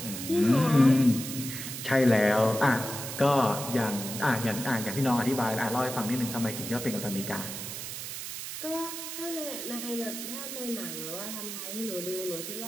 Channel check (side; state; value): right; noise; hiss, 7 dB below the sound